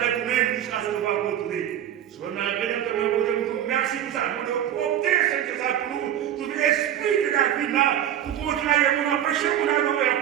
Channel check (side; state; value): left; quieter; 10.7 dB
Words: avec nous-mêmes jusqu'à ce qu'on va retourner. Si on a bien entendu, merci pour ça. Pour nous opter, c'est ça pour nous. Tout l'esprit de la vie là, pour continuer, on empêcher mon adorer,